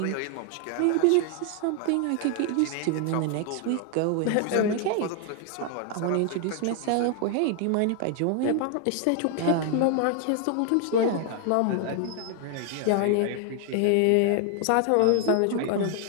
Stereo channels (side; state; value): both; different; correlation 0.00